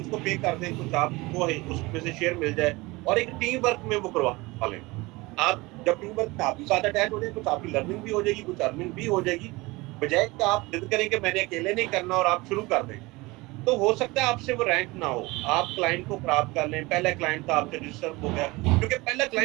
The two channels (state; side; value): quieter; left; 22.6 dB